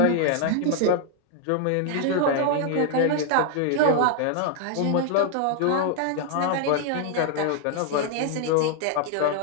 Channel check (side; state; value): both; different; correlation 0.00